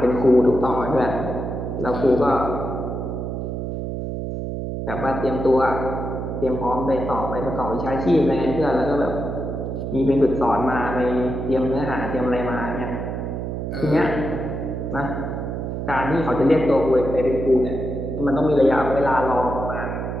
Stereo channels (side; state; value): right; noise; hum, 4 dB below the sound